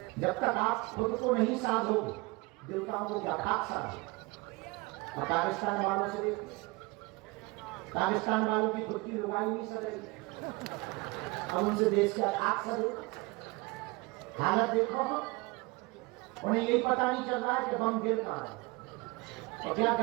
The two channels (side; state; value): left; quieter; 24.7 dB